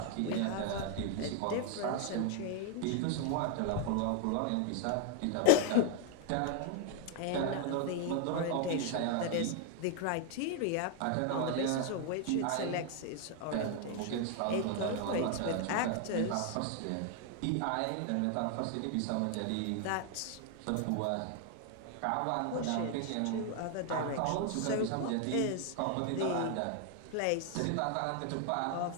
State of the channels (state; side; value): different; both; correlation 0.00